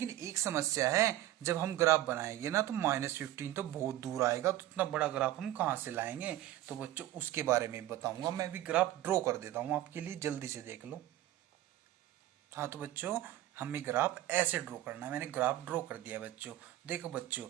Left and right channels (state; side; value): quieter; left; 14.5 dB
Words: एक समस्या है, जब हम ग्राफ बनाएंगे ना तो -15 तो बहुत दूर आएगा, तो इतना बड़ा ग्राफ हम कहाँ से लाएंगे। तो बच्चों उसके बारे में बताऊंगा, मैं भी ग्राफ ड्रॉ कर देता हूँ आपके लिए, जल्दी से देख लो। हाँ तो बच्चों हमें ग्राफ ऐसे ड्रॉ करना है, मैंने ग्राफ ड्रॉ कर दिया बच्चों। देखो बच्चों,